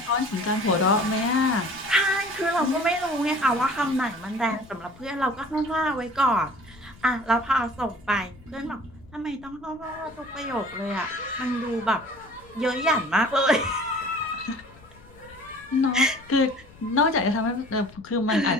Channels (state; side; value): noise; left; rumble, 23 dB below the sound